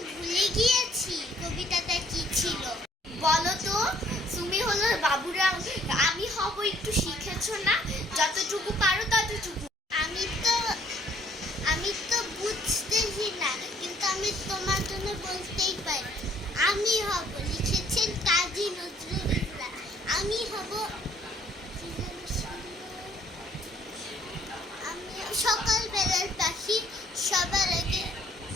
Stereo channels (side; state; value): both; normal; correlation 0.63